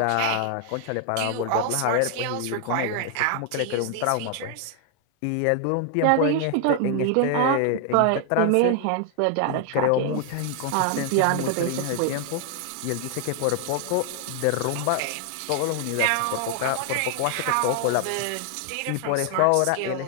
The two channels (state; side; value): different; both; correlation 0.00